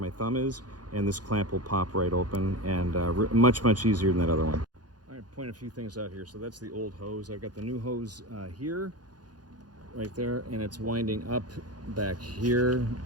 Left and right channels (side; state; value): left; late; 0.69 ms